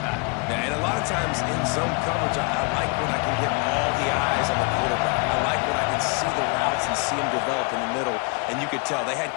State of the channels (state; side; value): quieter; right; 32.2 dB